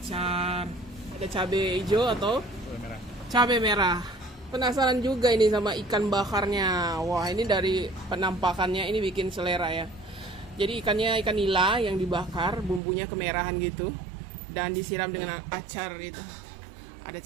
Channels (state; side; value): drops out; left; at 12.8 s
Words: Ada cabai hijau atau Merah. cabai merah. Penasaran juga ini sama ikan bakarnya. Wah, ini dari penampakannya ini bikin selera ya. Jadi ikannya ikan nila yang dibakar, bumbunya kemerahan gitu, dan disiram dengan acar itu. Ada